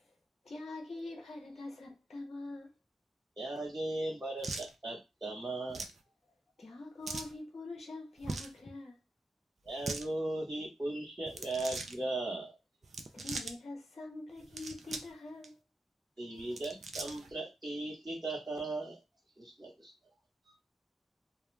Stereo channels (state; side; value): normal; both; correlation 0.86